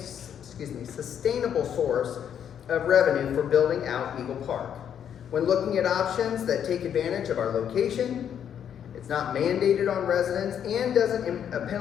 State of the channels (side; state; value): right; quieter; 8.9 dB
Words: source of revenue for building out Eagle Park. When looking at options that take advantage of our location, it's not mandated on residents, and doesn't